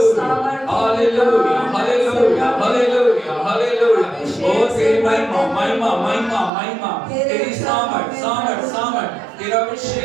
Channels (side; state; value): left; drops out; at 6.5 s